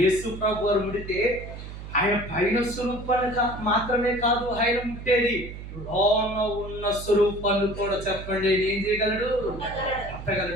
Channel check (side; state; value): right; noise; hum, 11 dB below the sound